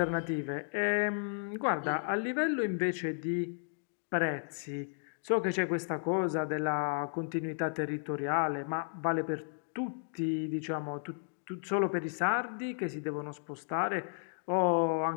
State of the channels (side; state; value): right; silent; digital silence